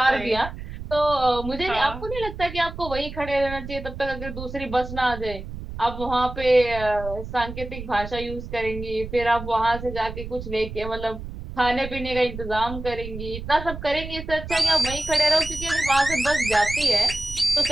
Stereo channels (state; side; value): noise; right; rumble, 10 dB below the sound